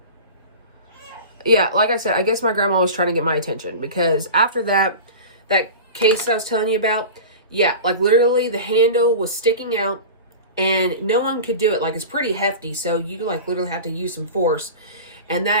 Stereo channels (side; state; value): both; inverted; correlation -0.32